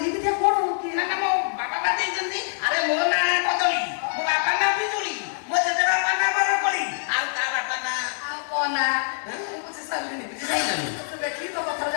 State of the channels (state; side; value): silent; right; digital silence